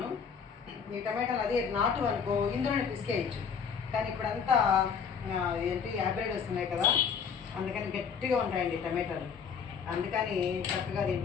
ఈ టమాటాలు అదే నాటు అనుకో ఇందులోనే పిసికేయచ్చు, కానీ ఇప్పుడంతా ఏంటి హైబ్రిడ్ వస్తున్నాయి కదా, అందుకని గట్టిగా ఉంటాయండి టమాటాలు. అందుకని చక్కగా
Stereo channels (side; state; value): right; quieter; 6.6 dB